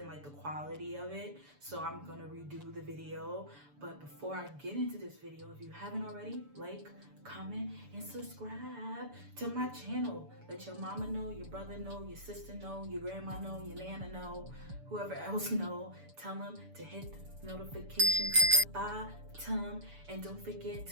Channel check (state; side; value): late; left; 6.9 ms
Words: like the quality of it. So I'm gonna redo the video. But before I get into this video, if you haven't already, like, comment, and subscribe to my channel. Let your mama know, your brother know, your sister know, your grandma know, your nana know, whoever else know. Tell them to hit the notification at the bottom, and don't forget